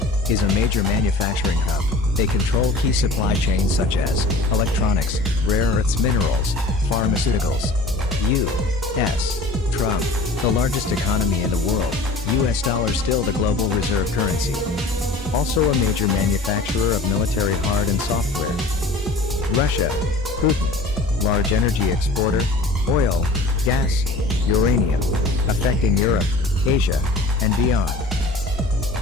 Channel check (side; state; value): right; quieter; 3.0 dB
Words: is a major manufacturing hub. They control key supply chains such as electronics, rare earths minerals, pharmaceuticals. U.S. Trump, the largest economy in the world, US dollar still the global reserve currency. Also a major manufacturer of military hard and software. Russia, Putin, large energy exporter, oil, gas, uranium, affecting Europe, Asia, and beyond.